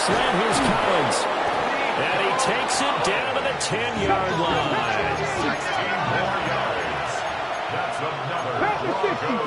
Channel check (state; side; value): identical; both; correlation 1.00